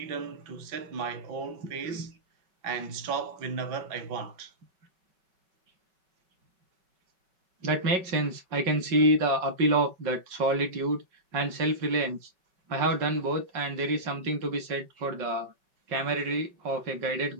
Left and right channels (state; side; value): late; left; 5.3 ms